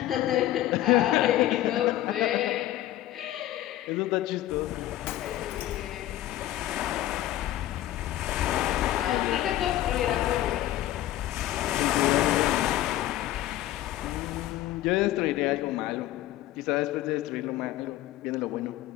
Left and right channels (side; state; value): right; quieter; 14.2 dB